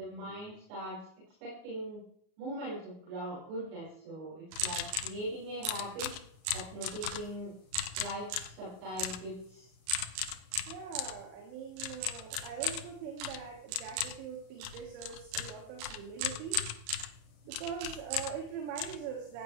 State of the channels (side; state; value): left; late; 38 ms